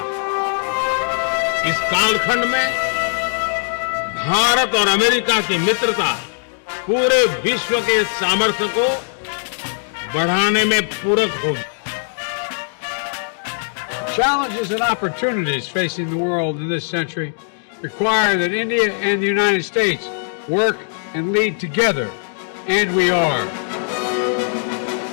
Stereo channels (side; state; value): right; silent; digital silence